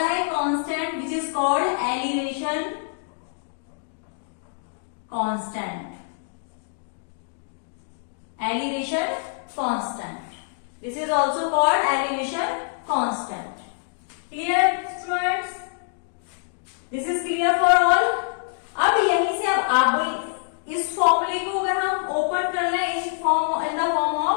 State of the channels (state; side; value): silent; right; digital silence